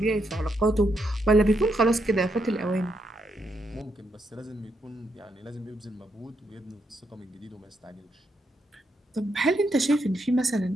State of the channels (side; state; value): both; normal; correlation 0.79